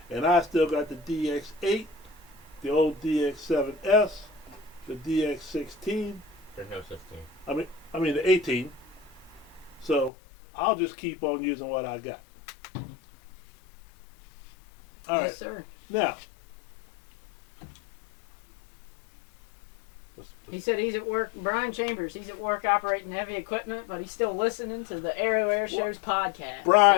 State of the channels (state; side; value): drops out; right; at 10.1 s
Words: and I still got the DX8, the old DX7S, the DX16. There's no such thing. I mean the 18. So I'll just keep on using what I got. All right. Yes, sir. Now, He said he's at work. Brian Chambers, he's at work operating heavy equipment, but he's still listening to the Aero Airshows podcast.